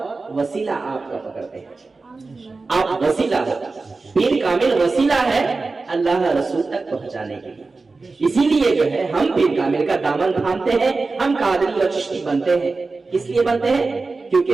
وسیلہ آپ کا پکڑتے ہیں. آپ وسیلہ ہو، پیر کامل وسیلہ ہے اللہ رسول تک پہنچانے کے لیے. اسی لیے جو ہے ہم پیر کامل کا دامن تھامتے ہیں، ہم قادری اور چشتی بنتے ہیں. کس لیے بنتے ہیں؟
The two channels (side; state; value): left; quieter; 3.8 dB